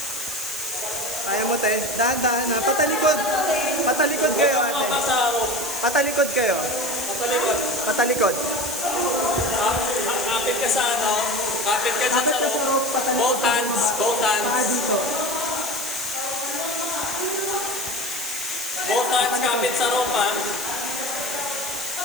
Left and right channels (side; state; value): right; noise; hiss, 7 dB below the sound